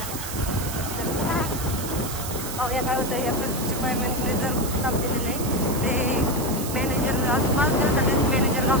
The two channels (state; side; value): noise; right; hiss, 8 dB below the sound